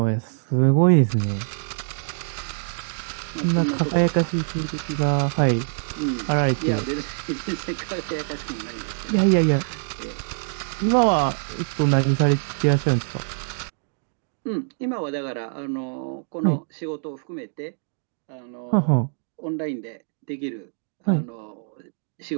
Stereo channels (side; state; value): left; silent; digital silence